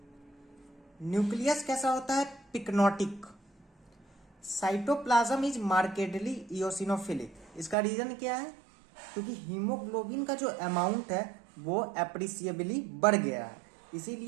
Nucleus कैसा होता है? Pyknotic. Cytoplasm is markedly eosinophilic. इसका रीजन क्या है? क्योंकि हीमोग्लोबिन का जो अमाउंट है वो एप्रिसिएबली बढ़ गया है,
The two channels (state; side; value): drops out; left; at 7.8 s